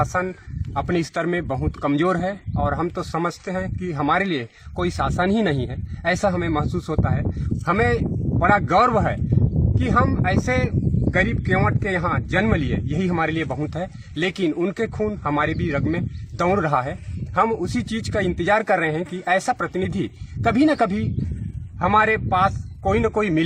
अपने स्तर में बहुत कमजोर है। और हम तो समझते हैं कि हमारे लिए कोई शासन ही नहीं है, ऐसा हमें महसूस होता है। हमें बड़ा गर्व है कि हम ऐसे गरीब केवट के यहाँ जन्म लिए, यही हमारे लिए बहुत है। लेकिन उनके खून हमारे भी रग में दौड़ रहा है। हम उसी चीज का इंतजार कर रहे हैं कि ऐसा प्रतिनिधि कभी न कभी हमारे पास कोई न कोई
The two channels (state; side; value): identical; both; correlation 1.00